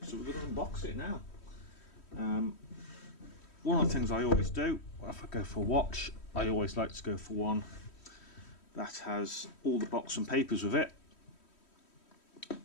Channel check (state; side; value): late; right; 3.1 ms